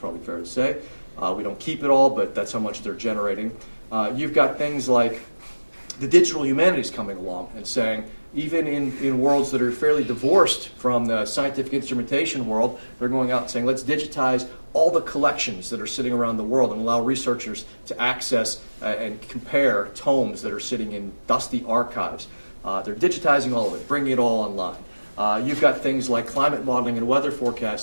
fair to say. We don't keep it all, but that's how much they're generating. You've got things like the digital humanities coming along and saying, even in worlds that are fairly divorced from the scientific instrumentation world, they're going out and saying, let's digitize all the collections that are sitting around the world and allow researchers to access and compare tomes that are sitting in dusty archives. They're digitizing all of it, bringing it all online. You've got things like climate modeling and weather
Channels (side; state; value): both; inverted; correlation -1.00